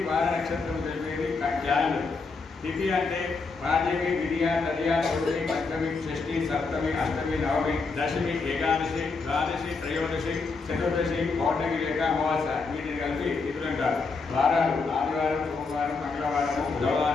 వార, నక్షత్రం తెలిపేది క్యాలెండర్. తిథి అంటే పాడ్యమి, విధియ, తదియ, చతుర్థి, పంచమి, షష్ఠి, సప్తమి, అష్టమి, నవమి, దశమి, ఏకాదశి, ద్వాదశి, త్రయోదశి, చతుర్దశి, పౌర్ణమి లేక అమావాస్య వీటిని కలిపి తిథులు అంటారు. వారాలు ఆదివారం, సోమవారం, మంగళవారము,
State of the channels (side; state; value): right; quieter; 4.3 dB